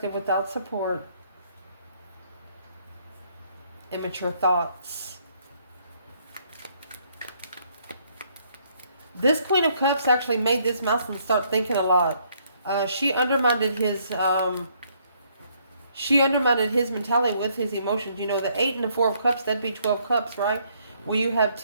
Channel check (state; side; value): inverted; both; correlation -0.68